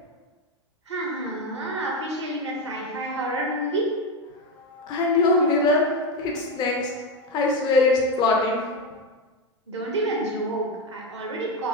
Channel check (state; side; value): normal; both; correlation 0.12